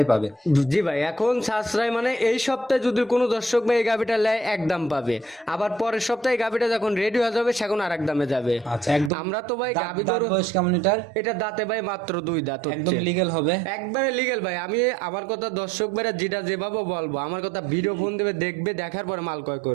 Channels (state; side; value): drops out; left; at 9.1 s